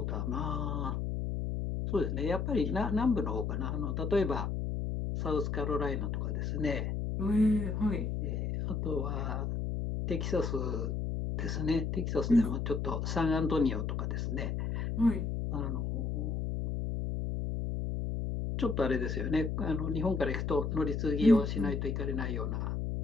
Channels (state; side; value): noise; left; hum, 1 dB below the sound